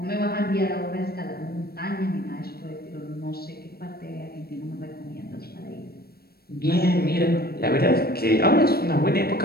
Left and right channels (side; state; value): right; late; 0.45 ms